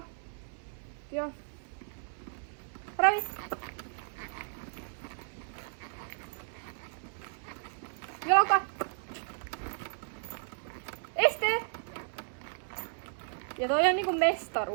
Joo. Ravi! Jalka! Este! Ja toi on niinku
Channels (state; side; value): silent; left; 55 dB below the other